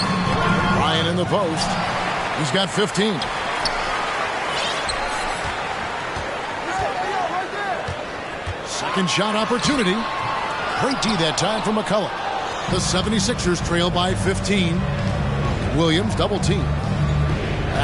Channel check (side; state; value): both; identical; correlation 1.00